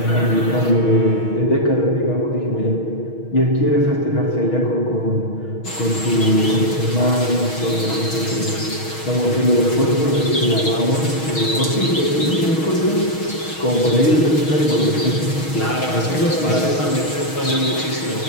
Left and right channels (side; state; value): right; late; 6.3 ms